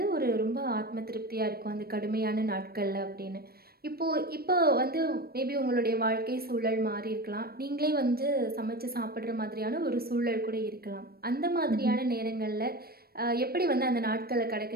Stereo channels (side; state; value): left; late; 0.44 ms